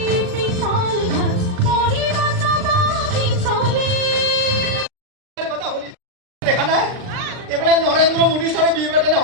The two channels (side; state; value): left; late; 39 ms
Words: নৰেন্দ্ৰ মোদী ছাৰে বিয়ে পাতে